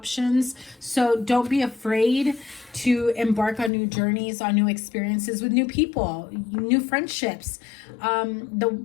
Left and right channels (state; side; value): drops out; right; at 3.7 s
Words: So don't be afraid to embark on new journeys, on new experiences with new people, new friendships.